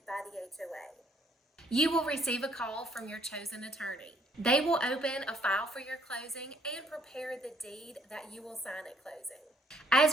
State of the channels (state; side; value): normal; both; correlation 0.65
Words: by the HOA. You will receive a call from your chosen attorney. They will open a file for your closing and prepare the deed that you will sign at closing.